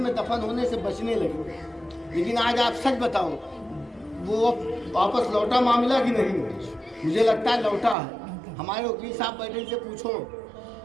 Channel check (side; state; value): left; drops out; at 8.0 s